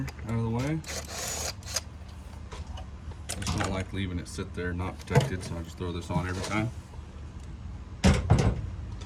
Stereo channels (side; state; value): both; identical; correlation 1.00